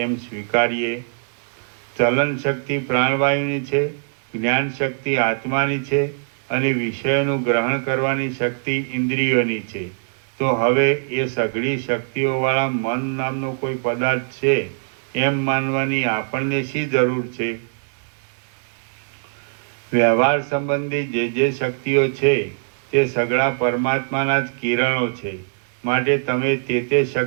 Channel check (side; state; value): left; silent; digital silence